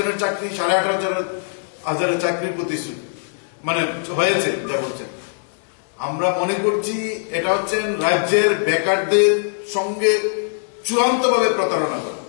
চাকরি ১৮,৫০০ চাকরির প্রতিশ্রুতি মানে হয়েছে যা বলছেন। আমরা মনে করছি এটা হচ্ছে রাজ্যের বেকারদের সঙ্গে চূড়ান্তভাবে প্রতারণা করা,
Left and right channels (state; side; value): silent; right; digital silence